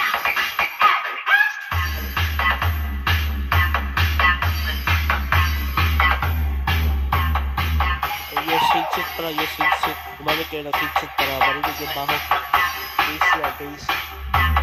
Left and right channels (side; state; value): both; identical; correlation 1.00